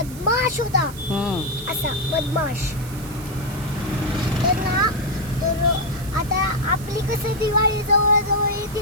होता, असा बदमाश. तर आता आपली कसं दिवाळी जवळ जवळ येते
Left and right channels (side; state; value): right; noise; hiss, 17 dB below the sound